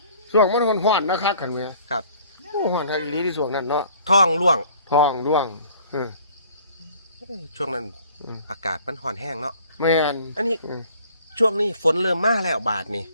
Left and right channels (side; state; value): both; inverted; correlation -0.54